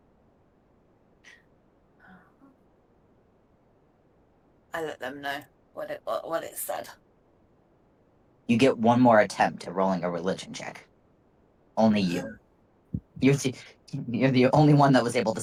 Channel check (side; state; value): both; identical; correlation 1.00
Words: I let them know what it said. You get one more attempt at rolling a religion check. Only you. You're the only one that was able to